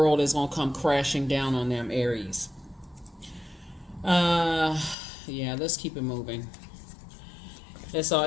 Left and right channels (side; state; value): right; drops out; at 5.0 s